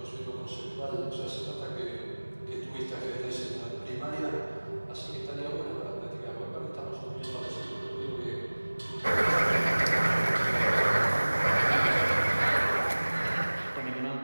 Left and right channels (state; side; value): inverted; both; correlation -1.00